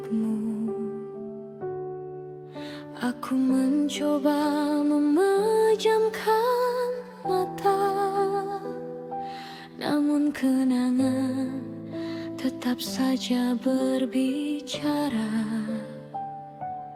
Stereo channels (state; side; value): identical; both; correlation 1.00